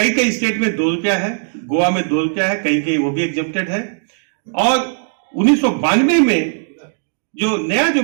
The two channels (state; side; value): silent; left; digital silence